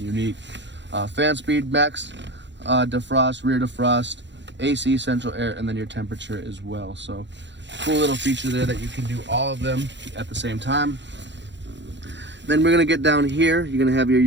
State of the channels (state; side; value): late; left; 0.52 ms